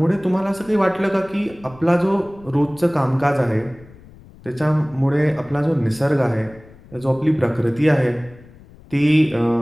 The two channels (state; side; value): noise; left; rumble, 23 dB below the sound